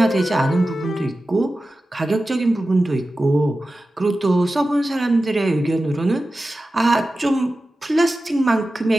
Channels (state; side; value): normal; both; correlation 0.94